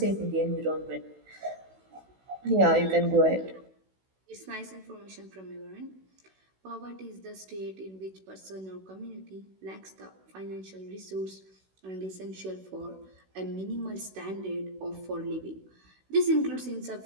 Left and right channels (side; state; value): left; late; 16 ms